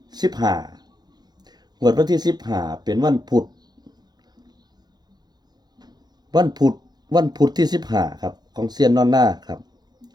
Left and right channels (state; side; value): late; left; 0.20 ms